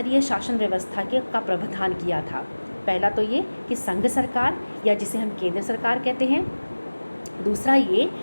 शासन व्यवस्था का प्रावधान किया था। पहला तो ये कि संघ सरकार या जिसे हम केंद्र सरकार कहते हैं, दूसरा ये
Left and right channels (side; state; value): both; inverted; correlation -1.00